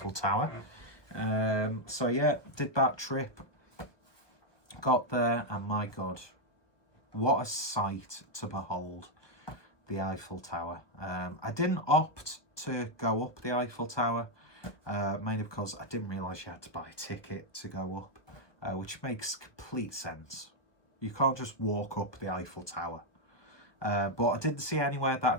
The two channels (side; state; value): right; late; 1.2 ms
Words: Tower. So yeah, did that trip. Got there, and my God, what a sight to behold, the Eiffel Tower. I didn't opt to go up the Eiffel Tower, mainly because I didn't realise you had to buy a ticket to go up, which makes complete sense. You can't just walk up the Eiffel Tower. But I didn't see anywhere that I